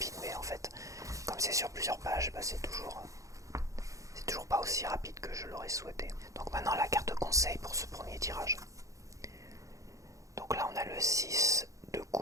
mais en fait, comme c'est sur plusieurs pages, bah, c'est toujours pas aussi rapide que je l'aurais souhaité. Donc maintenant, la carte conseil pour ce premier tirage. Donc là, on a le 6 de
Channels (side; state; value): left; late; 0.16 ms